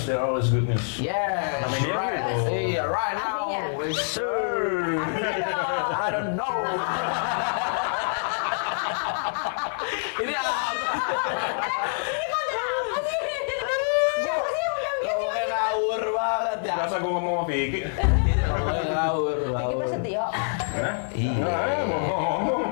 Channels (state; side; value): silent; right; digital silence